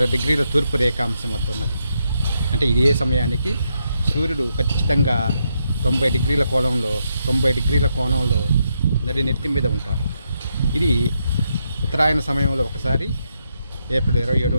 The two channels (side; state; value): both; inverted; correlation -0.81